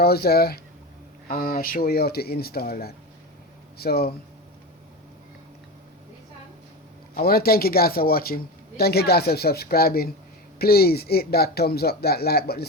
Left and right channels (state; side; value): normal; both; correlation 0.23